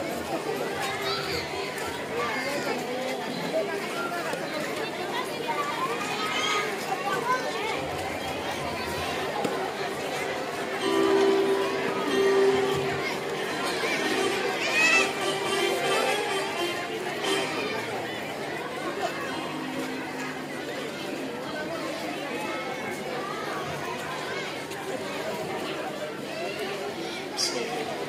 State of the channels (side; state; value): both; identical; correlation 1.00